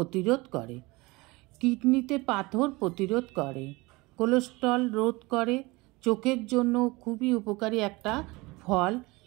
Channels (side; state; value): left; quieter; 23.2 dB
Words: করে, কিডনিতে পাথর প্রতিরোধ করে, কোলেস্টেরল রোধ করে, চোখের জন্য খুবই উপকারী একটা ফল,